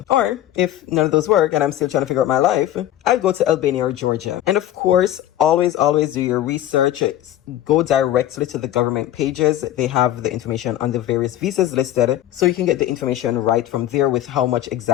Or if none of those work and I'm still trying to figure out my life, I'd go to Albania or Georgia. And of course, always do your research. Go directly to the government pages. They have the information on the various visas listed, so you can get the information right from there with how much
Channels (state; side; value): quieter; right; 12.8 dB